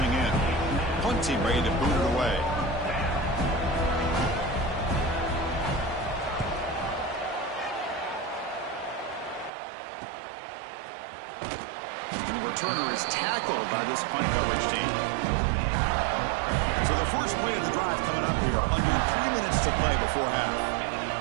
in. Punt team ready to boot it away. returner is tackled by this punt coverage team. So the first play of the drive coming up here, under 3 minutes to play before half.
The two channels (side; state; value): left; drops out; at 9.5 s